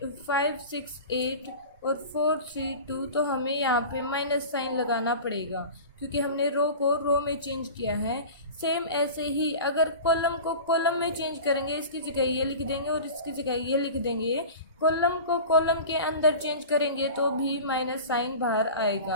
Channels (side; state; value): both; inverted; correlation -0.35